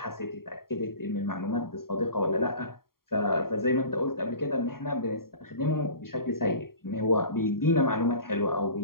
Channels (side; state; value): right; late; 0.93 ms